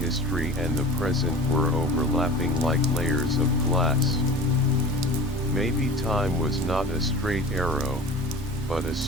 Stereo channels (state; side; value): normal; both; correlation 0.38